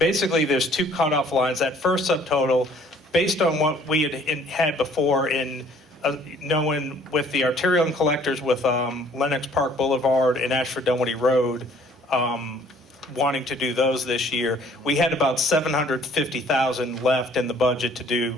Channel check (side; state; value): both; normal; correlation 0.58